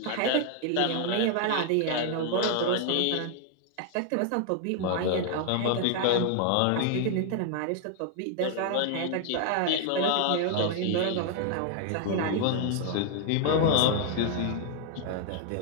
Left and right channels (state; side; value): different; both; correlation 0.00